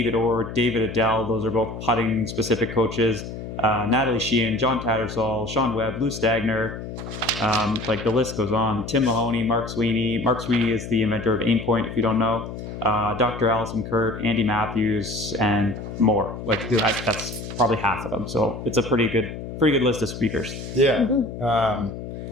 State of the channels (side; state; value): left; noise; hum, 9 dB below the sound